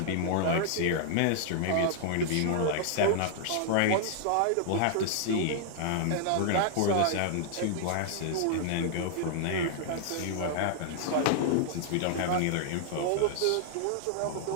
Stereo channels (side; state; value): both; different; correlation -0.01